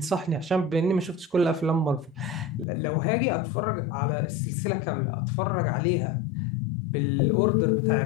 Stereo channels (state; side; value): drops out; right; at 2.7 s